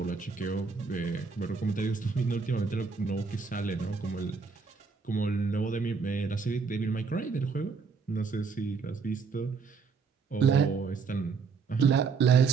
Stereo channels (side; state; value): left; quieter; 5.1 dB